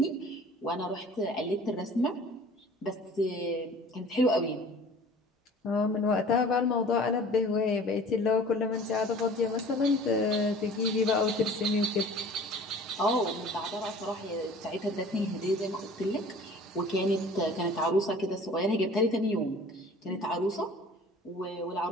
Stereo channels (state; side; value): normal; both; correlation 0.46